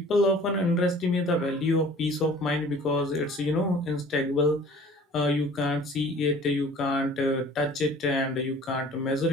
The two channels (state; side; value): normal; both; correlation 0.48